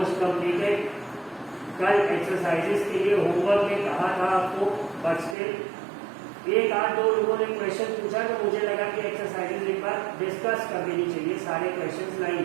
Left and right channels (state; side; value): drops out; left; at 5.4 s